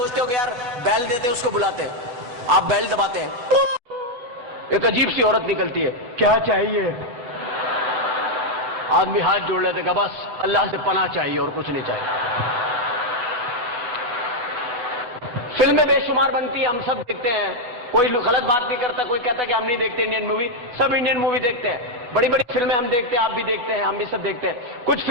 हो कि यार बेल देते हैं, उसको बुलाते हैं, आप बेल दबाते हैं, एक अजीब सी औरत निकलती है, क्या चाहिए। आदमी हाथ जोड़ लेते हैं, बस अल्लाह से पनाह चाहिए और कुछ नहीं चाहिए। फिल्में बेशुमार बनती है, हम सब देखते हैं। कोई गलत बात नहीं करता, कोई कहता कि हम नहीं देखते इंडियन मूवी। सब इंडियन मूवी देखते हैं। बड़ी बड़ी फिल्में हम देखते हैं, आप भी देखते हैं, हम भी सब देखते हैं। कुछ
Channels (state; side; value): late; left; 8.1 ms